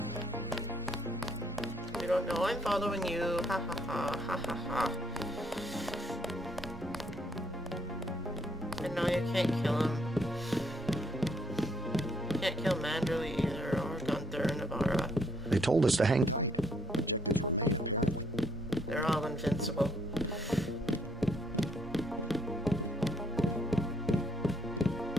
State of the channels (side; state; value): both; normal; correlation 0.69